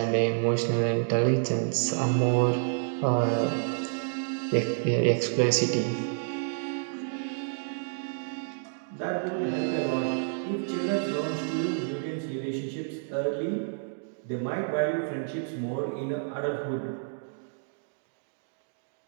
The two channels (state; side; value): silent; left; digital silence